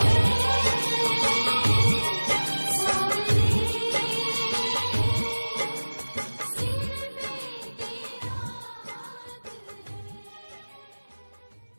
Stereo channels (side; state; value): both; inverted; correlation -1.00